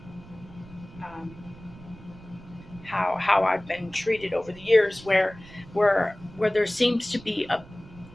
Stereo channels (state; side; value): noise; right; rumble, 19 dB below the sound